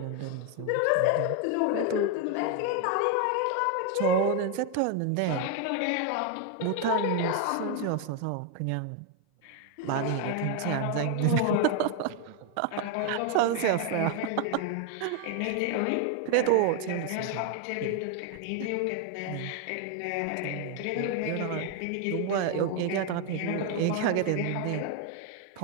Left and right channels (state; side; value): different; both; correlation 0.01